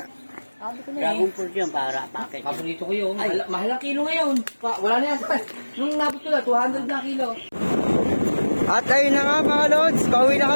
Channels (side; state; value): both; inverted; correlation -1.00